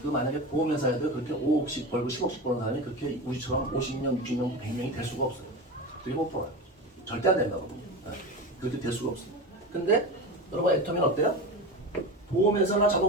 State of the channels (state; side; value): normal; both; correlation 0.25